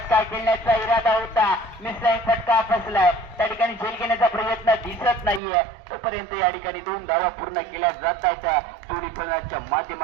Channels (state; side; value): drops out; left; at 5.4 s